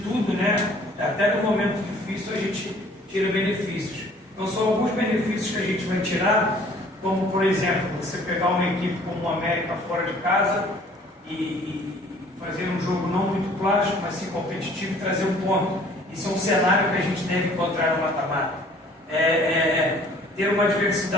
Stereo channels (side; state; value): both; normal; correlation 0.54